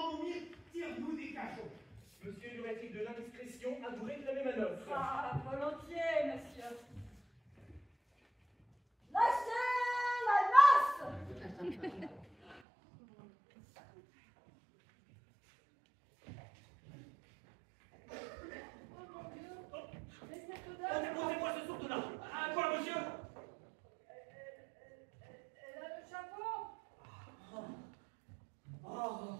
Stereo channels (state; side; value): drops out; left; at 12.6 s